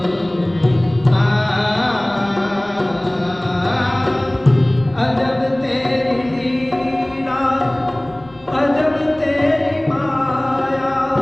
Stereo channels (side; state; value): left; noise; rumble, 27 dB below the sound